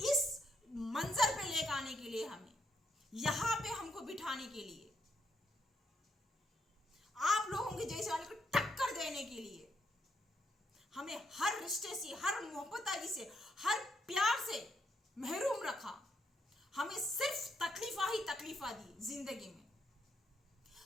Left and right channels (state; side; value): normal; both; correlation 0.76